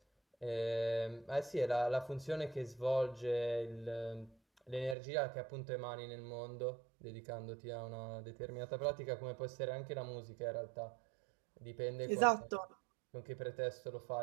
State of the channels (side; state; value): left; drops out; at 5.0 s